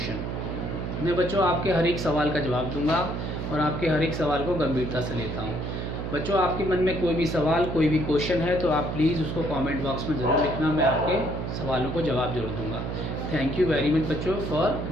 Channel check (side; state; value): right; noise; hum, 4 dB below the sound